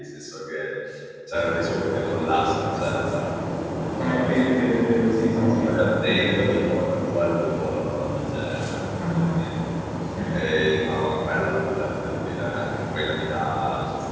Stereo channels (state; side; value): identical; both; correlation 1.00